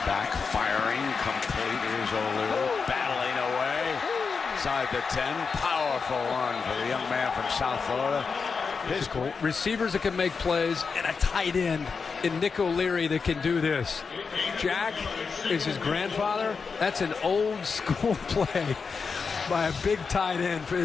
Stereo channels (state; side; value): quieter; right; 5.2 dB